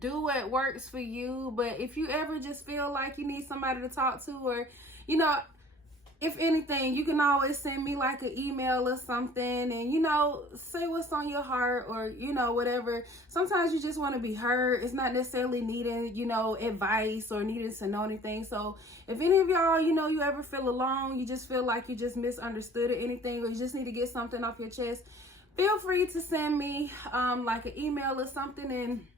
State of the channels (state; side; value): normal; both; correlation 0.50